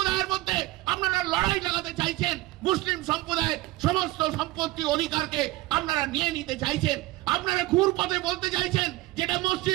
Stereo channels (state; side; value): quieter; left; 18.7 dB